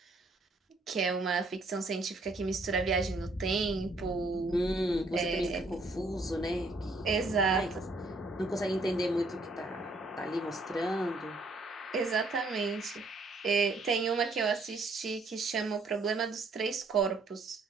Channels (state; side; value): quieter; left; 3.0 dB